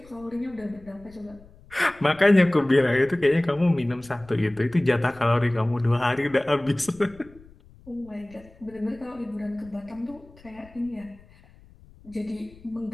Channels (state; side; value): noise; left; rumble, 24 dB below the sound